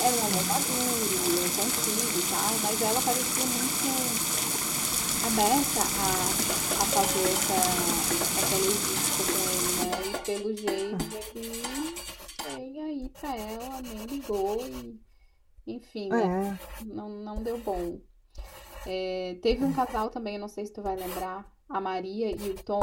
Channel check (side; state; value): both; identical; correlation 1.00